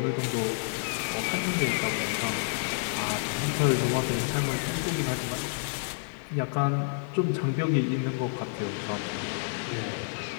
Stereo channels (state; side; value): silent; right; digital silence